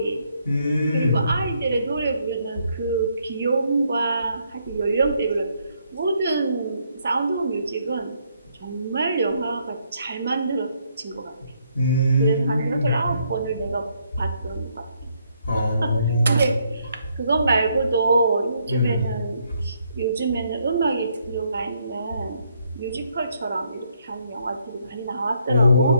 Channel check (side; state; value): both; inverted; correlation -0.73